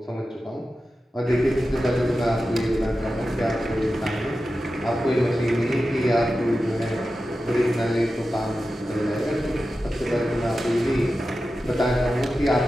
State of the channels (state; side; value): normal; both; correlation 0.92